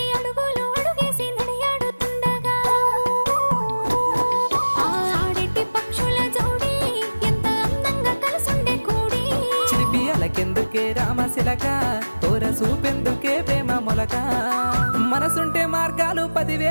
అడుగులు అడుగేసి నడియాడుతుండగా ఆడెట్టి పక్షుల జోడి ఎంత అందంగా కలుసుండే కూడి చిలిపి అలకెందుకే రామశిలక తోర సూపెందుకే ప్రేమ మొలక మనసుంటే మార్గాలు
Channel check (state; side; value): inverted; both; correlation -1.00